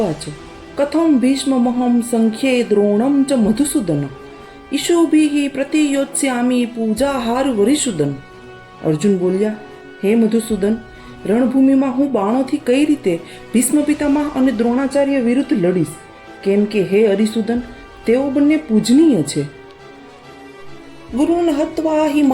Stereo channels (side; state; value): both; identical; correlation 1.00